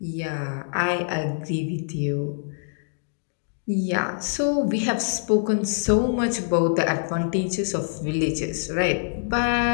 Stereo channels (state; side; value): silent; right; digital silence